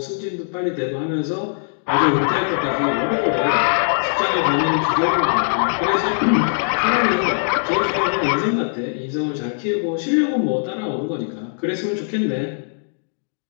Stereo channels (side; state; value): right; silent; digital silence